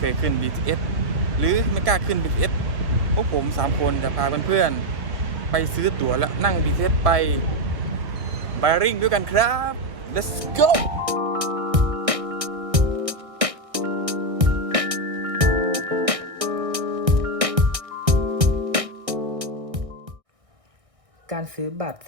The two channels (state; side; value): late; left; 1.6 ms